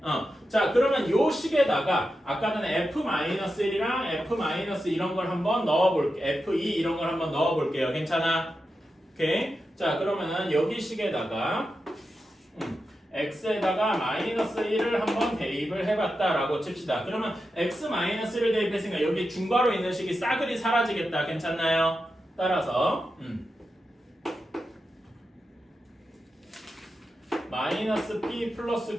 자, 그러면 요 식에다가 아까 전에 f-1이랑 f- 이런 걸 한번 넣어볼게요. f2 이런 걸 한번 넣어볼게요. 괜찮아? 오케이? 자, 그러면은 여기 식에다가 x에다가 마이너스 1을 한번 대입을 해봤다라고 칩시다. 그러면 x 마이너스 1을 대입했으니까 여기 중괄호 있는 식이 싸그리 사라지겠다. 괜찮나요? 따라서 마이너스 p 플러스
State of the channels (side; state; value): both; normal; correlation 0.89